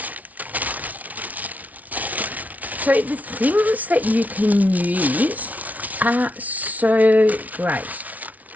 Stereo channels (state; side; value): late; left; 0.073 ms